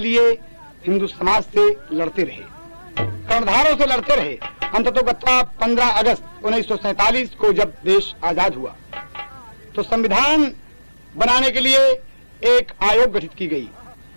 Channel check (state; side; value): inverted; both; correlation -1.00